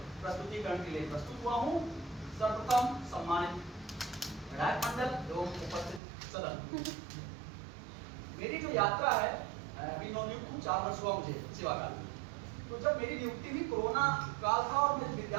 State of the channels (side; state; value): left; drops out; at 6.0 s